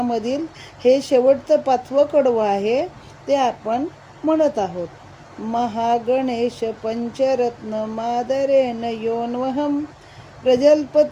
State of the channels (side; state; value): both; identical; correlation 1.00